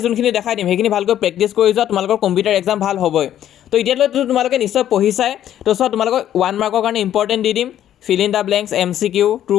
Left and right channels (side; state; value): right; quieter; 11.3 dB